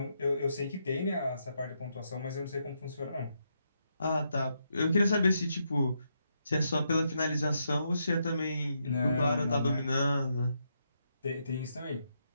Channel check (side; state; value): both; inverted; correlation -0.80